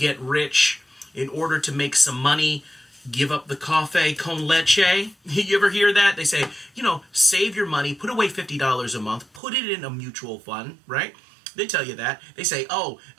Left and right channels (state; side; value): drops out; left; at 9.4 s